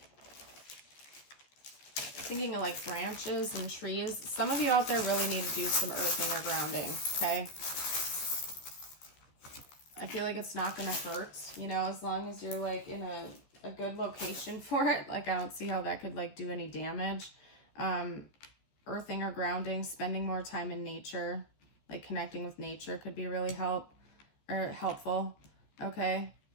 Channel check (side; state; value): right; late; 14 ms